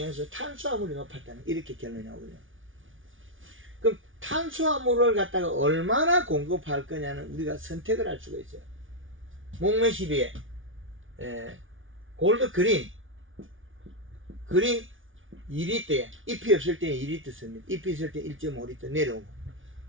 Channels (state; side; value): late; left; 0.57 ms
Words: 탄수화물이 높았다는 이렇게 결론이 나오거든요. 그럼 탄수화물을 갖다가 얼마나 공급할 거냐는 우리가 선택을 할 수가 있어요. 목매시비에 골드 그린 2리터에 잎이 없을 때는 2리터 씁니다. 잎이 있을 때 1.5리터 내려오고